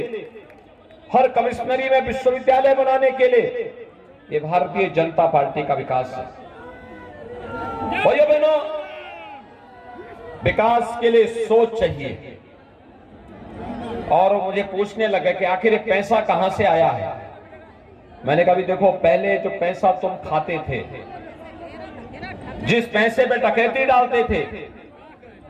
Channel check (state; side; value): identical; both; correlation 1.00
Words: हर कमिश्नरी में विश्वविद्यालय बनाने के लिए, ये भारतीय जनता पार्टी का विकास है। भाइयों बहनों, विकास के लिए सोच चाहिए। और मुझे पूछने लगे कि आखिर ये पैसा कहां से आया है। मैंने कहा भी देखो, पहले जो पैसा तुम खाते थे, जिस पैसे पे डकैती डालते थे,